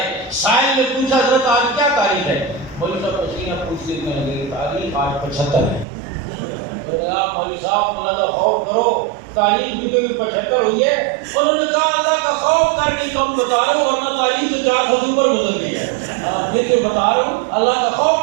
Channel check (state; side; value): drops out; left; at 5.9 s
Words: سائل نے پوچھا حضرت آج کیا تاریخ ہے؟ مولوی صاحب پسینہ پوچھتے میں لگے, تاریخ آج 75 ہے. تو نے کہا مولوی صاحب اللہ کا خوف کرو, تاریخ بھی کوئی 75 ہوئی ہے. انہوں نے کہا اللہ کا خوف کر کے کم بتا رہا ہوں, ورنہ تاریخ تو 400 سے اوپر گزر گئی ہے. یہ تو بتا رہا ہوں, اللہ کا